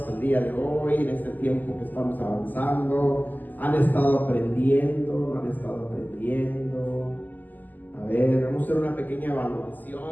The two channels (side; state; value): right; late; 0.085 ms